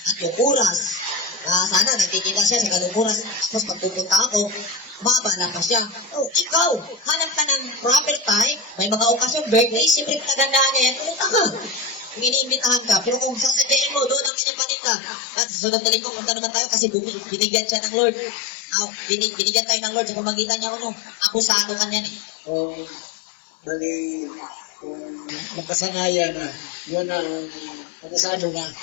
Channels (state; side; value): drops out; right; at 14.3 s